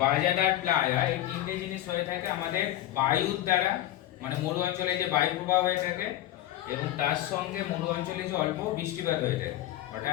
বাজাদার, প্লায়া এই তিনটে জিনিস হয়ে থাকে আমাদের বায়ুর দ্বারা, মানে মরু অঞ্চলে যে বায়ু প্রবাহ হয়ে থাকে এবং তার সঙ্গে মরু অঞ্চলে যে অল্প বৃষ্টিপাত হয়ে থাকে।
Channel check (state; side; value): quieter; right; 13.8 dB